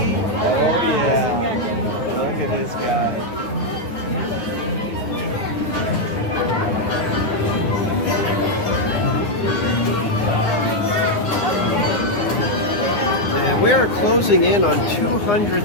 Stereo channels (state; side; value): late; right; 9.7 ms